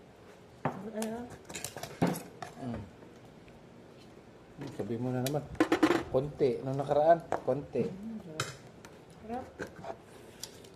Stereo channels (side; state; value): both; identical; correlation 1.00